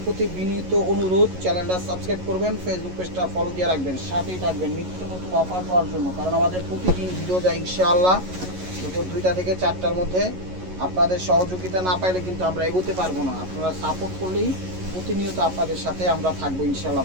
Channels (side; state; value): left; late; 11 ms